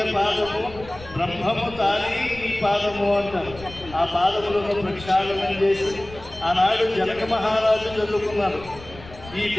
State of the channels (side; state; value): left; noise; rumble, 18 dB below the sound